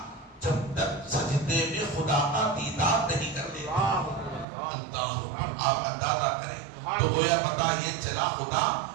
جب تک سجدے میں خدا کا دیدار نہیں کر لیتا۔ آپ اندازہ کریں تو گویا پتا یہ چلا خدا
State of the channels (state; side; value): drops out; left; at 4.5 s